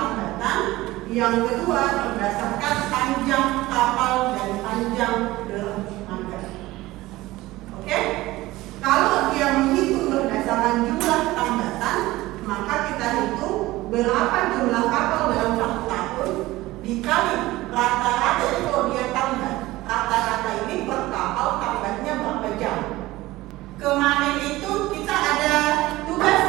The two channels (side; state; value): left; quieter; 18.2 dB